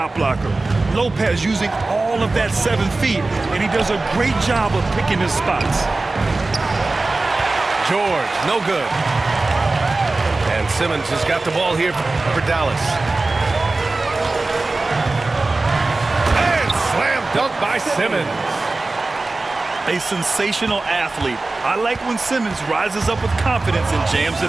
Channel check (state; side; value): quieter; left; 3.3 dB